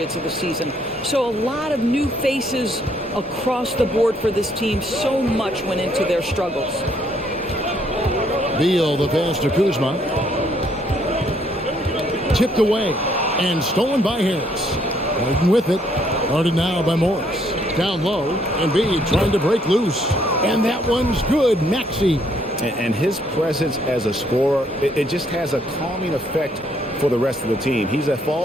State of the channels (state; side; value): normal; both; correlation 0.68